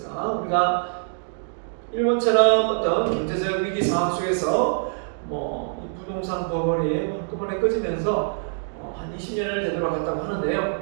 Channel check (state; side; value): silent; left; digital silence